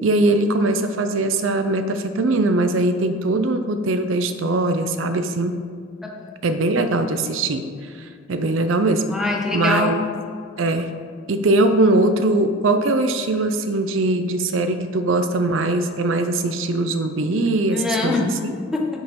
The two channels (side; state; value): both; normal; correlation 0.35